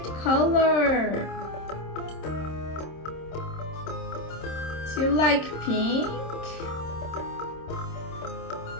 color. Do you like pink?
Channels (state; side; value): late; right; 26 ms